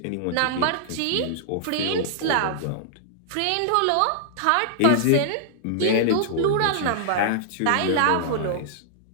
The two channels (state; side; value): different; both; correlation -0.01